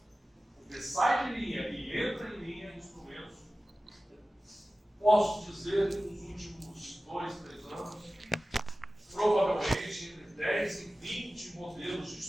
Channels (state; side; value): normal; both; correlation 0.96